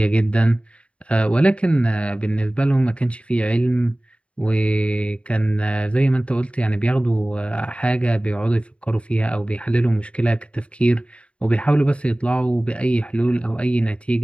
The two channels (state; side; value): late; right; 0.060 ms